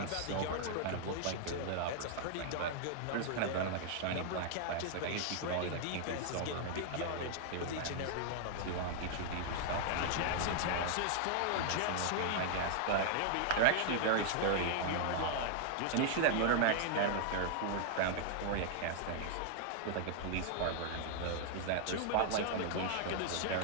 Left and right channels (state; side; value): different; both; correlation 0.00